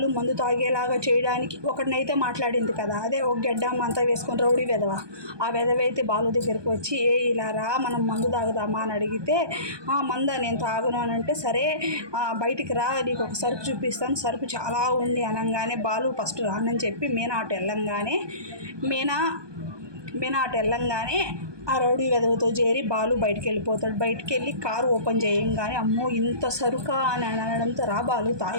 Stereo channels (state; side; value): late; left; 1.2 ms